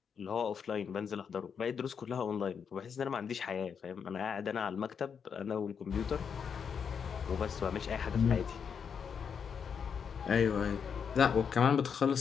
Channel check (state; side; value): quieter; right; 6.8 dB